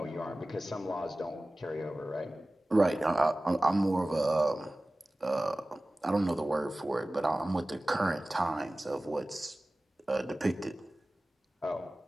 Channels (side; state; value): both; normal; correlation 0.97